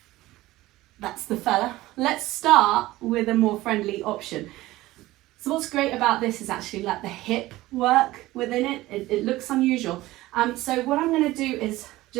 That's the fella. Let's start with a more friendly option. So what's great about this is actually let the hip work within it. It looks unusual. So what I'm going to do is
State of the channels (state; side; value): quieter; left; 17.5 dB